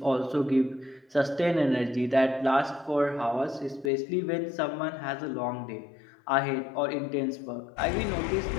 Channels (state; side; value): drops out; right; at 3.9 s